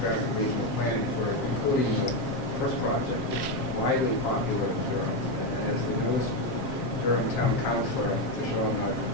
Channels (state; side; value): late; right; 7.5 ms